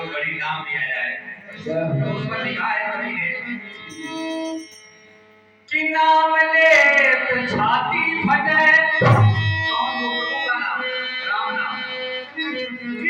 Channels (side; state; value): both; identical; correlation 1.00